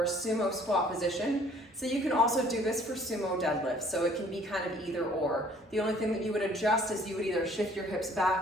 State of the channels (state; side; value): normal; both; correlation 0.57